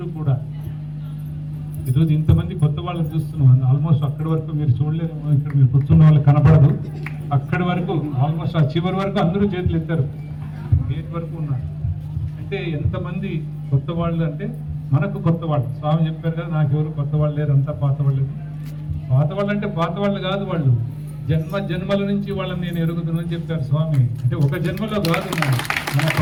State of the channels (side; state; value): both; identical; correlation 1.00